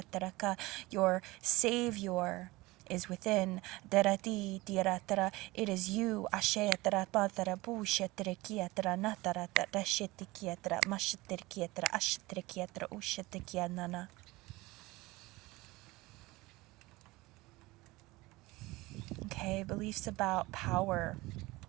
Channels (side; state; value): left; quieter; 20.9 dB